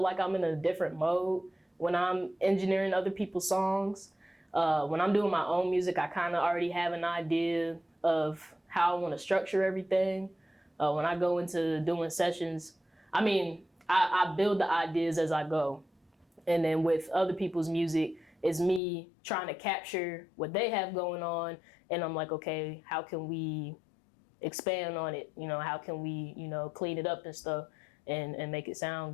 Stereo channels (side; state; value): right; drops out; at 18.8 s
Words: I'm in a different mode when I'm engineering other people's songs. When I'm doing my own music, I kind of already have an idea of how I want to structure everything. When I go into doing sessions, I build the ideas as I go. And then with other people's music, it's me trying to capture what they have going on. And I'm like, okay, how can we expand on it? How can we, clean it up and stuff and make it sound